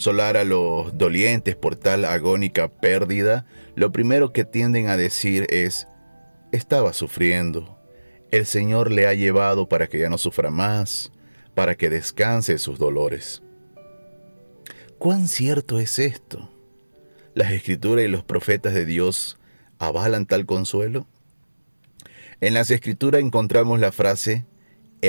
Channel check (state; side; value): inverted; both; correlation -1.00